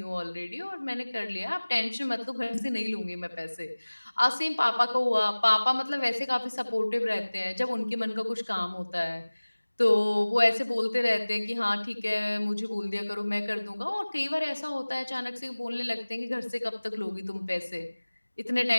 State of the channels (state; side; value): inverted; both; correlation -1.00